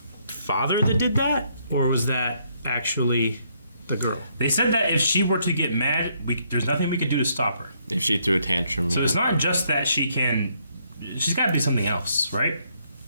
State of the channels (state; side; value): inverted; both; correlation -0.71